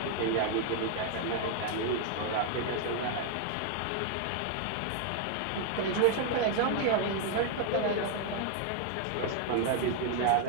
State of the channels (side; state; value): both; different; correlation 0.00